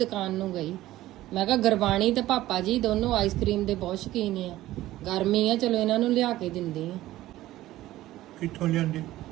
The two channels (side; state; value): left; quieter; 15.6 dB